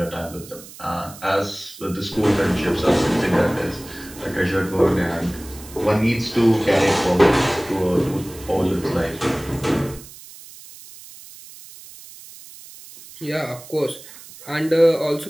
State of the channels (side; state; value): right; noise; hiss, 18 dB below the sound